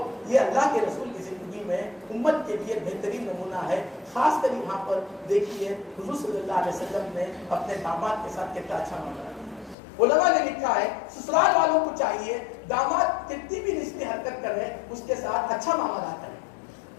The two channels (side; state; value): right; drops out; at 9.8 s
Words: یہ اللہ کے رسول کی زندگی میں امت کے لیے بہترین نمونہ ہے۔ خاص کر یہاں پر دیکھیے حضور صلی اللہ علیہ وسلم نے اپنے داماد کے ساتھ کتنا اچھا معاملہ کیا۔ علماء نے لکھا ہے سسرال والوں کو چاہیے داماد کتنی بھی رشتے حرکت کرے اس کے ساتھ اچھا معاملہ کرے،